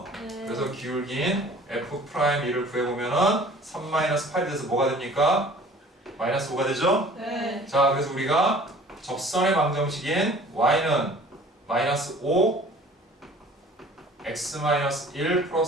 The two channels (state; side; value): normal; both; correlation 0.49